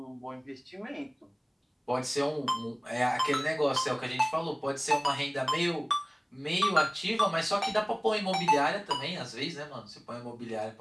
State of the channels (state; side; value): identical; both; correlation 1.00